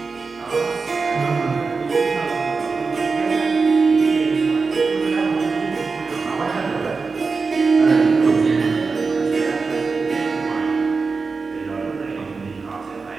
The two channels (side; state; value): left; quieter; 4.5 dB